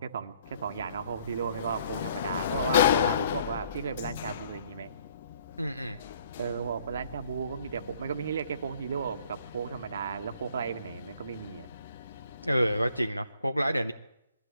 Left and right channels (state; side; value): inverted; both; correlation -0.60